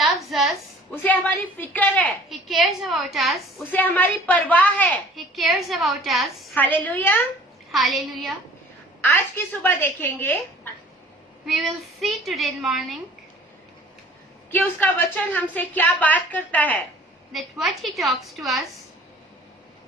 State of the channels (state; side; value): normal; both; correlation 0.50